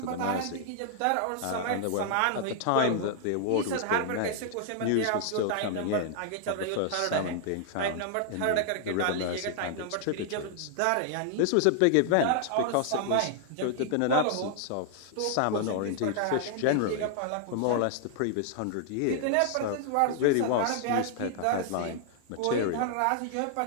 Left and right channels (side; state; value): both; different; correlation -0.01